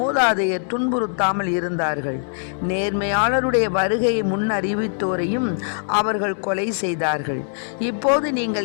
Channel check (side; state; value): right; silent; digital silence